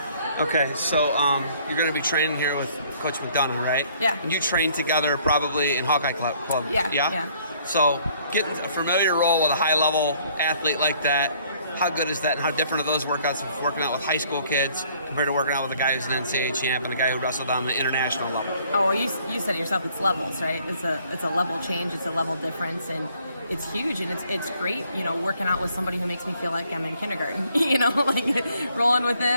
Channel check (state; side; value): inverted; both; correlation -0.62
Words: Okay, so you're going to be training here with Coach McDonough, right? Yeah. And you train together probably in Hawkeye Club. Yeah. So getting a familiar role with a high-level athlete like that, how good is that, and how different are those workouts of working out with high school kids compared to working out with a guy who's an NCAA champ and a guy who wrestled on the international level? Oh, well, you said it yourself, it's levels, right? It's a level change, it's a level difference, and it's huge, and it's great, working out with somebody who makes me feel like I'm in kindergarten, like rolling with